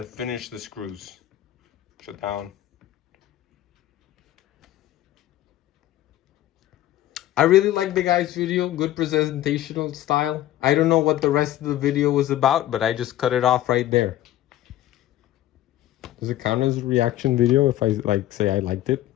finish the screws. Shut down. I really like the guy's video, good presentational style. I don't know what the rest of the video was about, but I just cut it off right there. Does it count as a reaction video if I say I liked it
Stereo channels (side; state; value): right; quieter; 13.8 dB